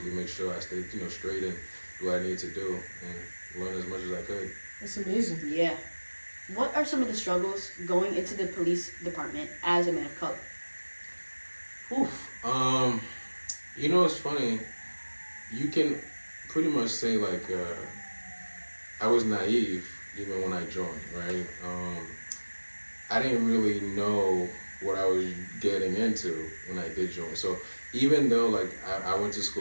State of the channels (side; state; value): both; inverted; correlation -1.00